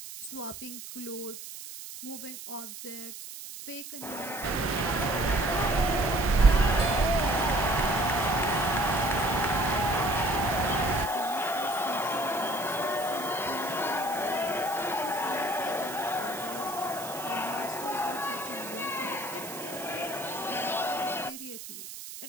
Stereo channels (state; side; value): noise; right; hiss, 11 dB below the sound